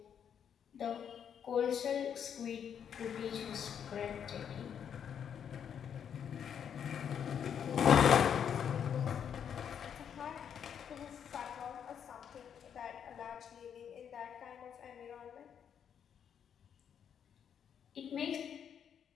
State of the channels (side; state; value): right; quieter; 8.2 dB